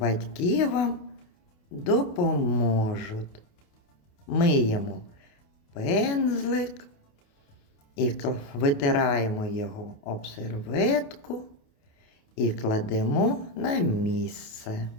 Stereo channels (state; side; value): late; right; 28 ms